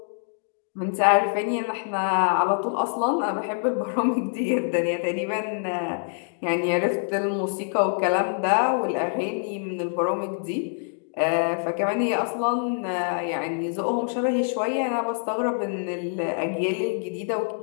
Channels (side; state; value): right; silent; digital silence